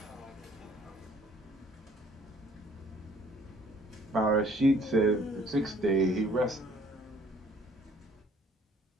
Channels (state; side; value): normal; both; correlation 0.58